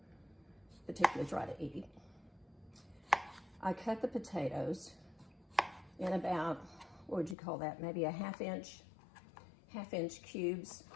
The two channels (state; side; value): drops out; right; at 7.4 s